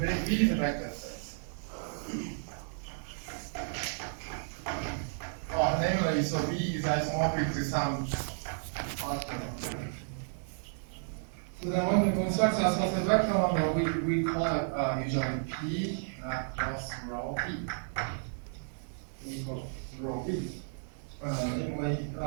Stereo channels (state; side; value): silent; left; 56 dB below the other